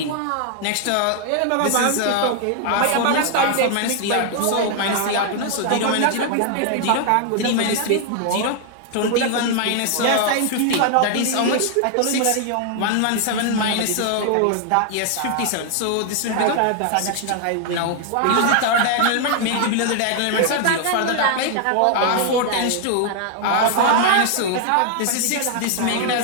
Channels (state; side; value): different; both; correlation 0.00